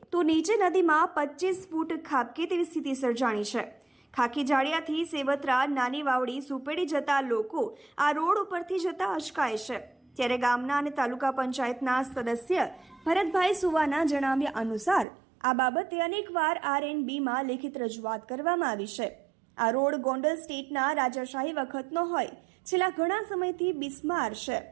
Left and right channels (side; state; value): left; drops out; at 15.1 s